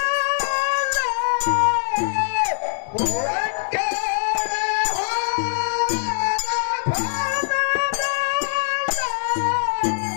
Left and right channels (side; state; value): right; silent; digital silence